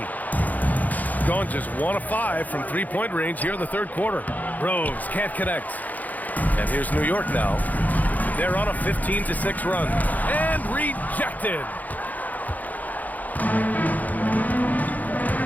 Gone just 1 of 5 from three-point range here in the third quarter. Rose can't connect. And here's New York now. They're on a 15-6 run. And rejected.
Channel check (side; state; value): right; late; 0.080 ms